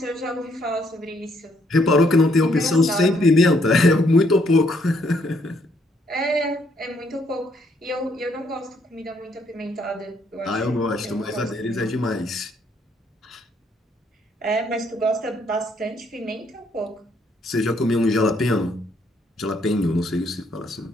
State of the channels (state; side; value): normal; both; correlation 0.70